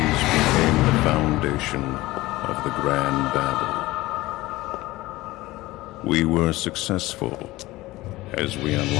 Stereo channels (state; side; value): quieter; right; 18.8 dB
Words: became the foundation of the Grand Babel. We were successful as we